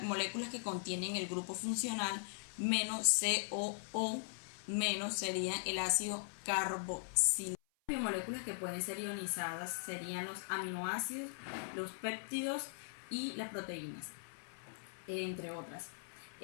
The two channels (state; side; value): silent; right; 51 dB below the other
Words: moléculas que contienen el grupo funcional -COO-, serían el ácido carboxílico. Biomoléculas que pueden ser ionizadas serían los aminoácidos, los péptidos y las proteínas, entre otras.